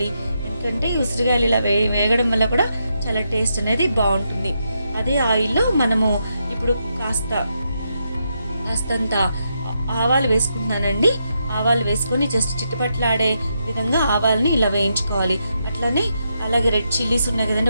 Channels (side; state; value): both; inverted; correlation -0.82